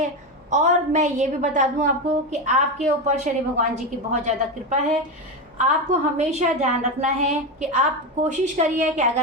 और मैं ये भी बता दूं आपको कि आपके ऊपर शनि भगवान जी की बहुत ज़्यादा कृपा है। आपको हमेशा ध्यान रखना है कि आप कोशिश करिए कि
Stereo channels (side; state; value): both; normal; correlation 0.15